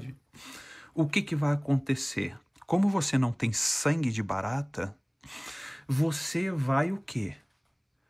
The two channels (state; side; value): identical; both; correlation 1.00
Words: O que vai acontecer? Como você não tem sangue de barata, você vai o quê?